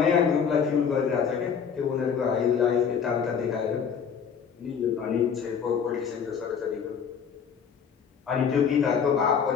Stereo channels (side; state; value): right; quieter; 7.0 dB